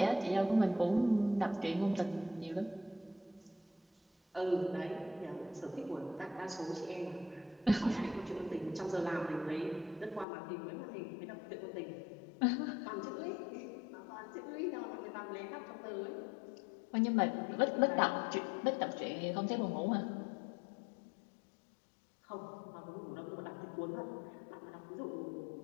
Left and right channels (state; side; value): drops out; right; at 10.2 s